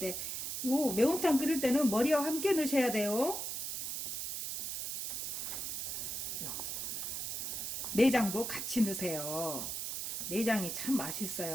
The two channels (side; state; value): right; noise; hiss, 3 dB below the sound